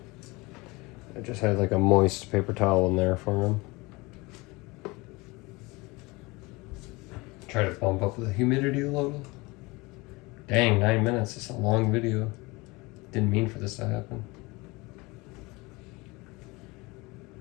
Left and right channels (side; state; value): right; quieter; 24.1 dB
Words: I just had like a moist paper towel in there for him. Try to bump up the humidity a little. Dang, 9 minutes. It's a long video. Didn't mean for this to happen.